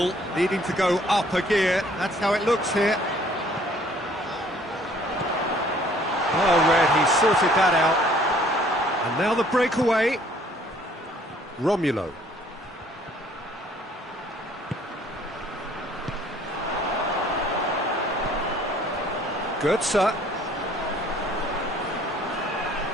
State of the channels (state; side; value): normal; both; correlation 0.58